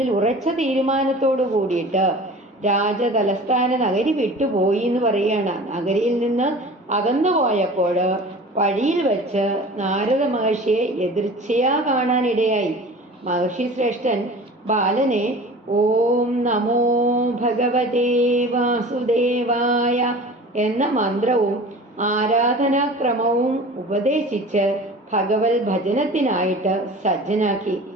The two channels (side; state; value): both; normal; correlation 0.40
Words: ഉറച്ച തീരുമാനത്തോടു കൂടിയിട്ട് രാജതലസ്ഥാന നഗരി വിട്ടുപോയി എന്ന് പറയുകയാണ്. നഗരിയിൽ നിന്ന് അകന്നു പോയപ്പോൾ വഴിയിൽ വെച്ച് നാരദ മഹർഷിയെ എതിർച്ചയാ കാണാനിടയായി. മഹർഷി ശ്രേഷ്ഠൻ ബാലനെ ഓം നമോ ഭഗവതേ വാസുദേവായ എന്ന മന്ത്രവും ആരാധനാക്രമവും ഉപദേശിച്ച് ഭഗവത് ഭജനത്തിനായിട്ട് സജ്ജനാക്കി.